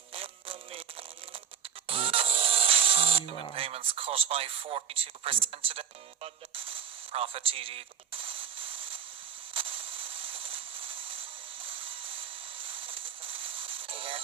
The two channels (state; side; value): quieter; left; 7.8 dB